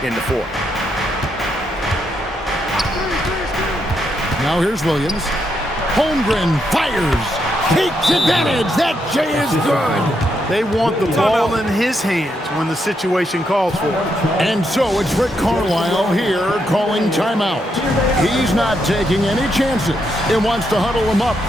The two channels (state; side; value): normal; both; correlation 0.80